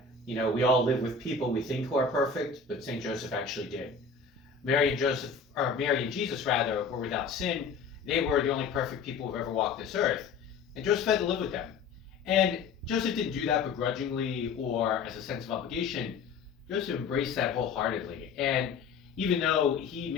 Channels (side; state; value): right; quieter; 5.1 dB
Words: you know, we all live with people we think who are perfect, but St. Joseph actually did. Mary and Jesus rather, were without sin. They were the only perfect people who've ever walked this earth. And Joseph had to live with them. And Joseph didn't do that begrudgingly or as a sense of obligation. Joseph embraced that wholeheartedly. And even though he